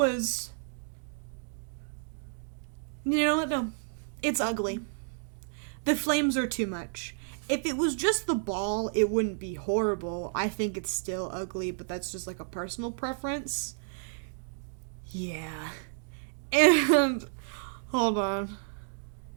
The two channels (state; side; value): silent; left; digital silence